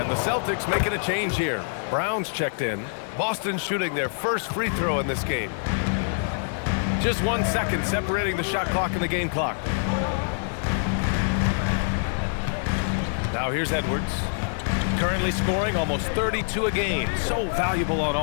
the Celtics making a change here. Brown's checked in. Boston shooting their first free throw in this game. Just 1 second separating the shot clock and the game clock. Now here's Edwards. Currently scoring almost 32 a game. So valuable on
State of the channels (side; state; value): right; silent; digital silence